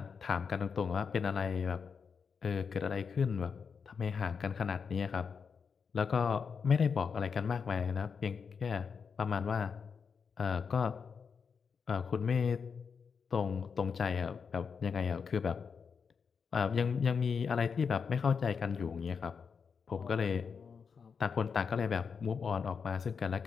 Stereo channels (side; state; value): right; quieter; 5.9 dB